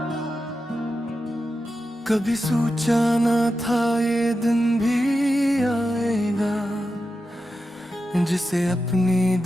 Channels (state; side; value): normal; both; correlation 0.90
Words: कभी सोचा न था ये दिन भी आएगा, जिसे अपनी